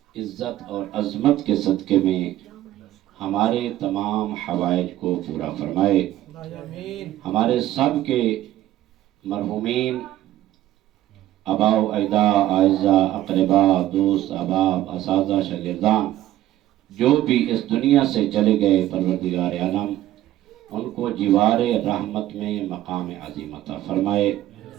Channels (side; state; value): left; quieter; 13.9 dB